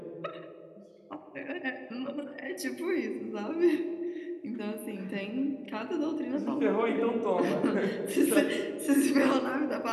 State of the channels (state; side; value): identical; both; correlation 1.00